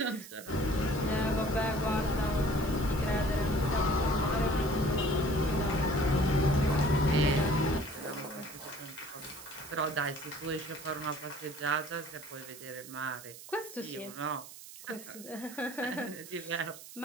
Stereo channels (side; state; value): right; noise; hiss, 15 dB below the sound